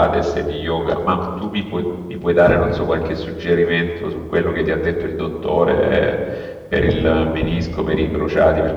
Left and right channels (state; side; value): identical; both; correlation 1.00